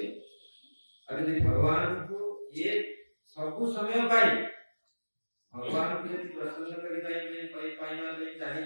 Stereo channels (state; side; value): inverted; both; correlation -1.00